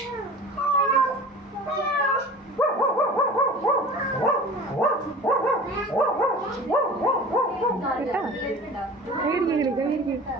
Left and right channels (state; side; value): normal; both; correlation 0.39